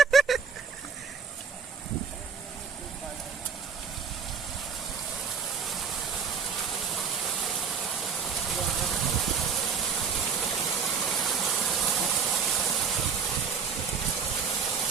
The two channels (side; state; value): left; quieter; 6.3 dB